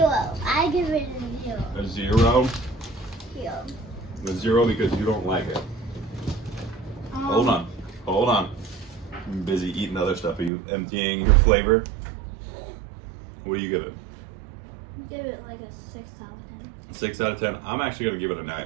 I give it a 0. A 0? 0. A 0 because you don't like it. Hold on. Hold on. I'm busy eating other stuff. Are you emptying your flavor? What do you give it? Give it like a 6 out of 10. 6 out of 10. I'm actually going to give it a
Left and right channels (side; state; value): left; drops out; at 10.5 s